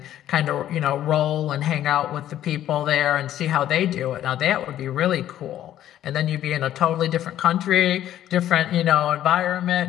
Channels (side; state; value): right; quieter; 12.0 dB